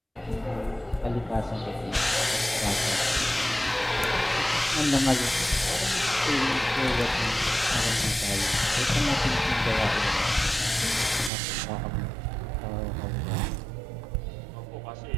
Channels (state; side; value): drops out; left; at 11.3 s